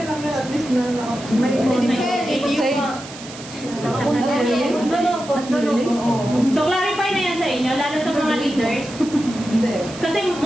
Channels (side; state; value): right; noise; hiss, 15 dB below the sound